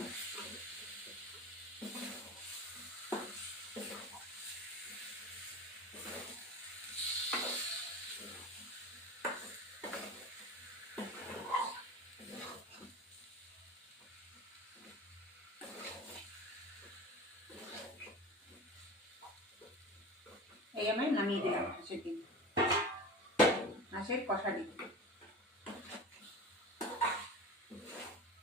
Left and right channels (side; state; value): both; normal; correlation 0.33